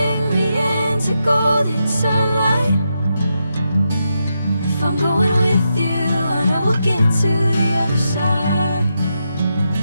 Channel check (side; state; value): both; inverted; correlation -0.85